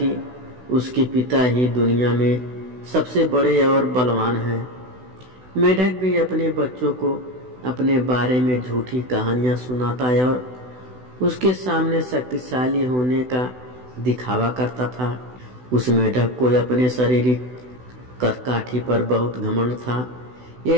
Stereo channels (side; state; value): left; late; 16 ms